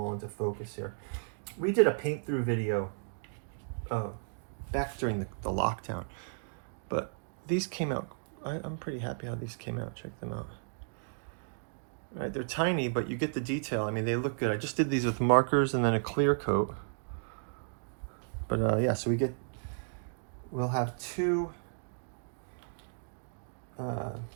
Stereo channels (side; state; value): left; silent; digital silence